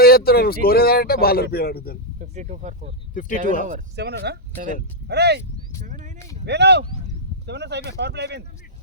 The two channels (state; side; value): normal; both; correlation -0.06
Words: చెప్తున్నారు స్కోర్ ఏదంటే బాలర్ పేరు అడుగుతారు 52 for 4 52 7 అరే 7 అయినాయి వేణు 7 అయిపోయింది పవర్ ప్లే అయిపోయింది